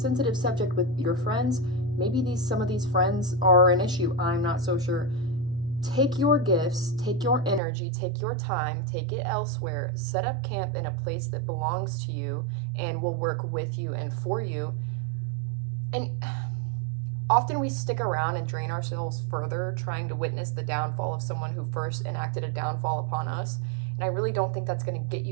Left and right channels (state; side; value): drops out; left; at 7.6 s